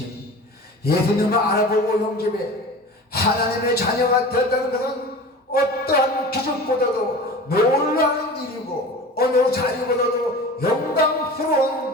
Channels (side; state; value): both; normal; correlation 0.36